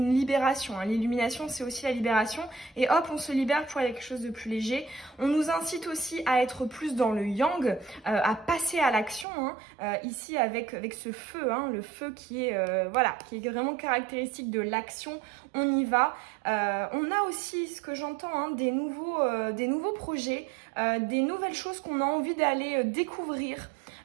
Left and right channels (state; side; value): drops out; left; at 9.2 s